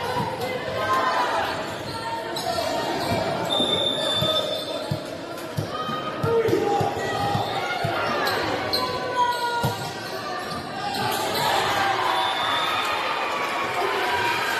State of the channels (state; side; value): identical; both; correlation 1.00